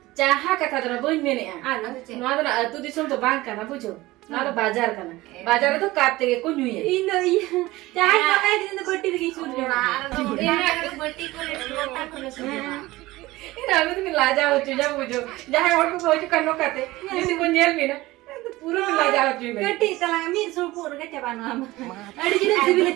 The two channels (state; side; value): quieter; left; 18.9 dB